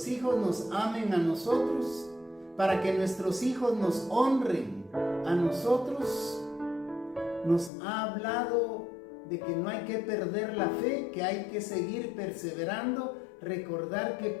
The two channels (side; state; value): right; drops out; at 7.7 s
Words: hijos nos amen a nosotros, para que nuestros hijos nos honren a nosotros. Nos ha hablado de que no hay que perder la fe, que hay que seguir perseverando, recordar que